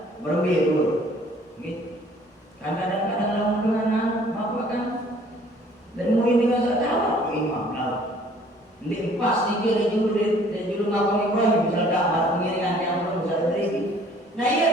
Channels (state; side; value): normal; both; correlation 0.56